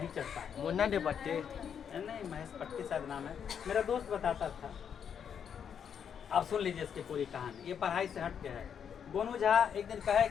चढ़ता है। मुन्ना दे पट्टे नहीं, महेश पट्टी शायद नाम है, मेरा दोस्त बताता था। आप सुन लीजिए इसकी पूरी कहानी, ये पढ़ाई से हट के है। गोनू झा एक दिन कहे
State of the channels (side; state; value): right; quieter; 7.8 dB